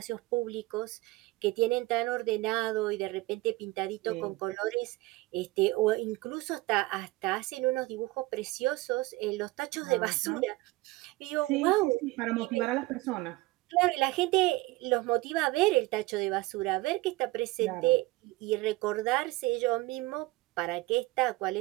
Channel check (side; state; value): left; quieter; 20.3 dB